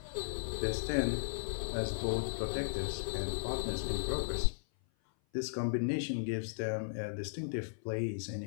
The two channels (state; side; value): silent; right; 54 dB below the other